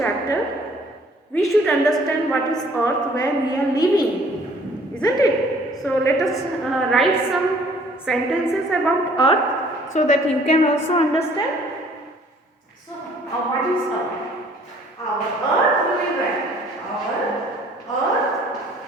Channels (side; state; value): both; normal; correlation 0.57